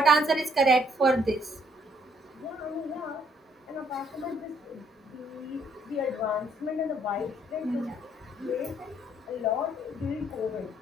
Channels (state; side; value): normal; both; correlation 0.66